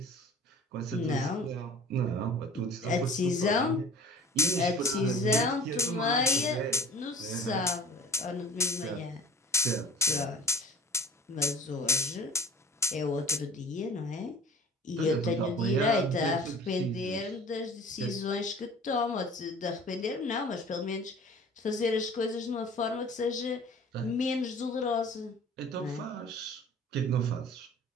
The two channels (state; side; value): normal; both; correlation 0.45